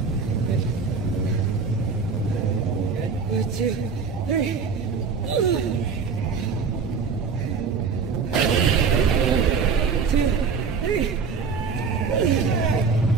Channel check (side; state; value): left; quieter; 5.4 dB